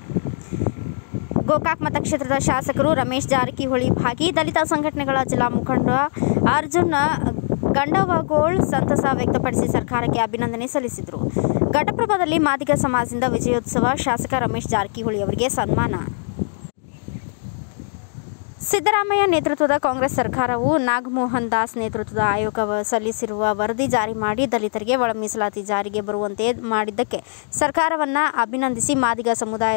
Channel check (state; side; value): silent; right; digital silence